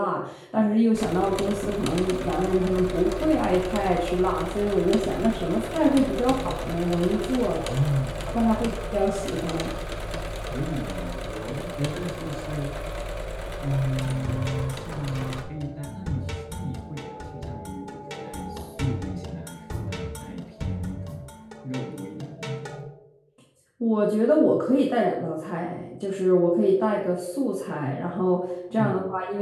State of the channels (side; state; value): both; identical; correlation 1.00